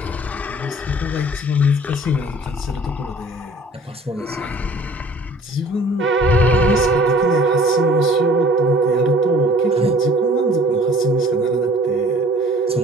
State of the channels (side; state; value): both; normal; correlation 0.51